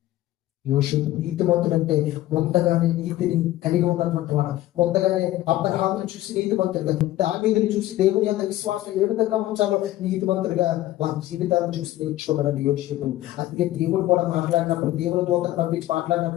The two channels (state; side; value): quieter; right; 15.1 dB